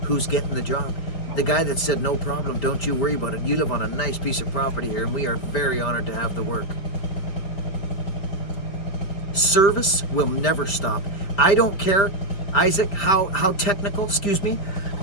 Who's getting the job? The guy that said, no problem, don't you worry about it. You live on a nice piece of property here and we are very honored to have the work. Service will never stop. I don't care, Isaac, how technical, sorry,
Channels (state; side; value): late; right; 5.2 ms